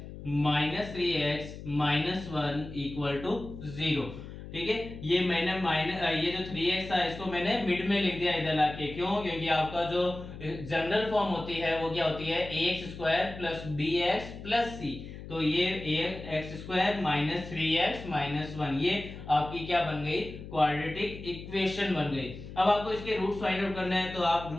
minus 3x minus 1 equal to 0। ठीक है, ये मैंने ये जो 3x था इसको मैंने मिड में लिख दिया इधर लाके, क्यों, क्योंकि आपका जो जनरल फॉर्म होती है वो क्या होती है ax square plus bx plus c। तो ये ax square minus 3x minus 1 ये आपकी क्या बन गई, क्वाड्रेटिक इक्वेशन बन गई। अब आपको इसके रूट्स फाइंड आउट करना है, तो आप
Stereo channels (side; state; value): left; noise; hum, 12 dB below the sound